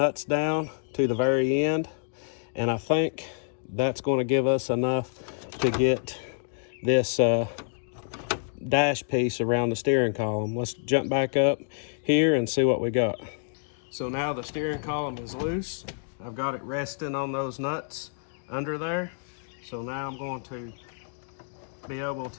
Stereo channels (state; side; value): silent; right; digital silence